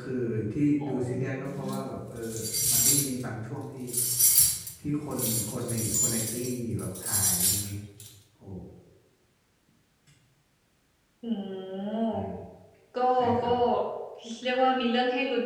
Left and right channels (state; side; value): identical; both; correlation 1.00